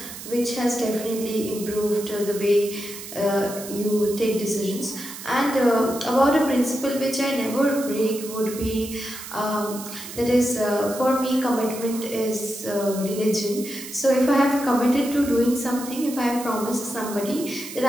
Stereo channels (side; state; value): right; noise; hiss, 12 dB below the sound